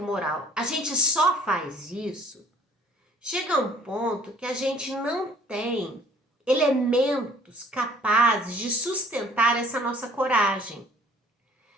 moral, a gente só faz isso, chega um ponto que a gente não tem elementos capazes de sustentar essa nossa coragem.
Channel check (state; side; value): normal; both; correlation 0.56